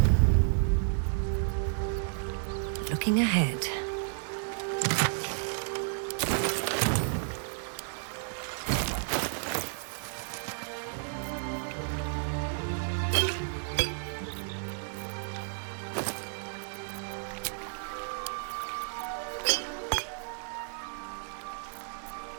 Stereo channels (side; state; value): left; silent; digital silence